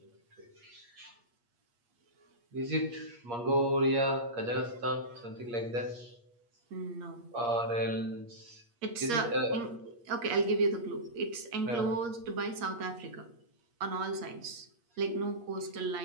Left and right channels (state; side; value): late; left; 8.5 ms